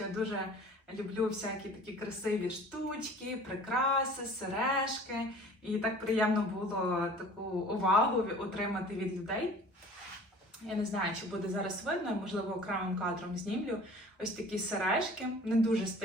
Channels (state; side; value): normal; both; correlation 0.46